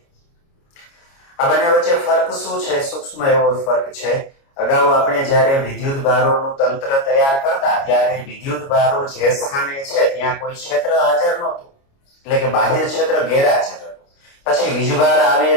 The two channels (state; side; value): late; right; 29 ms